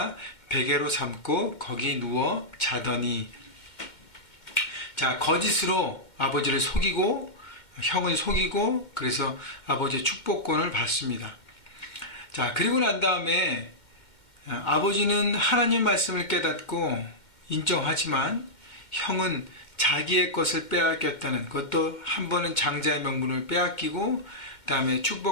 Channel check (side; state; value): right; late; 2.2 ms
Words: 베개로 삼고 거기 누워 자더니. 자, 거짓으로 아버지를 속이고 형을 속이고 그래서 아버지의 축복권을 받습니다. 자, 그리고 난 다음에 아버지는 하나님 말씀을 깨닫고 인정하지만 형은 자기의 것을 빼앗겼다는, 그것도 한 번은 장자의 명분을 빼앗기고 그 다음에